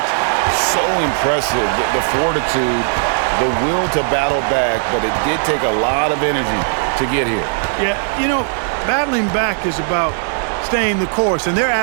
So impressive. The fortitude, the will to battle back, but it did take a lot of energy to get here. Yeah, you know, battling back is about staying the course, and their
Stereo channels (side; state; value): left; silent; digital silence